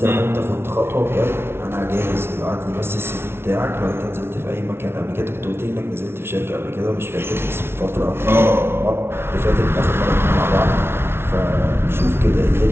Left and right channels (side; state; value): left; late; 0.12 ms